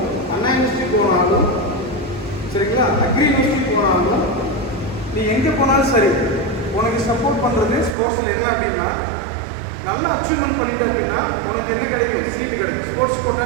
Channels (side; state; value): left; drops out; at 8.0 s